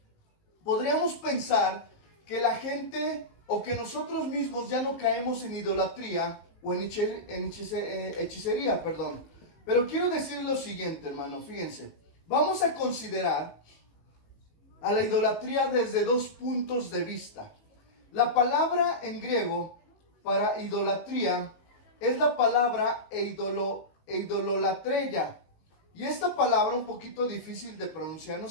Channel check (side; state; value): right; late; 19 ms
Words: podríamos pensar que la gente o que nosotros mismos ya no caemos en idolatría o en hechicería, perdón. Pero quiero decir lo siguiente, hermano, fíjense. Vamos a considerar a la idolatría desde dos puntos de vista. La palabra en griego para idolatría es la palabra eidololatreia. Y esta palabra un poquito difícil de pronunciar, no